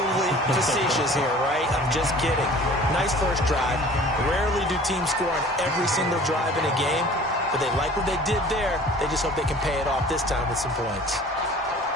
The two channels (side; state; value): both; normal; correlation 0.47